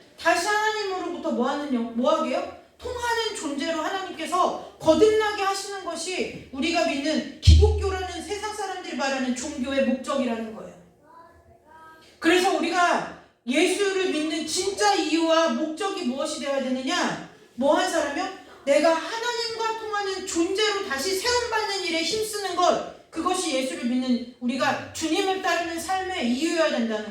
다시 하나님으로부터 뭐 하게요? 통하는 존재로 하나님께서 거듭나게 하시는 것이 우리가 믿는 기독교라는 세상 사람들이 말하는 종교의 목적이라는 거예요. 그래서 우리가 예수를 믿는 진짜 이유와 목적이 무엇이 되어야 되느냐? 뭐 한 사람이요? 내가 하나님과 통하는 존재로 다시 세움받는 일에 힘쓰는 것, 그것이 예수를 믿는 우리가 주님을 따르는 삶의 이유여야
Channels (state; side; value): identical; both; correlation 1.00